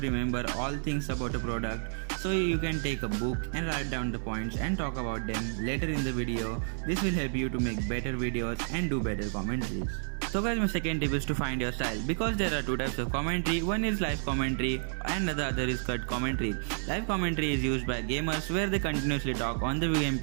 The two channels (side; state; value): left; silent; digital silence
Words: all things about a product. So you can take a book and write down the points and talk about them later in the video. This will help you to make better videos and do better commentaries. So guys, my second tip is to find your style, because there are two types of commentary. One is live commentary and the other is cut commentary. Live commentary is used by gamers where they continuously talk on the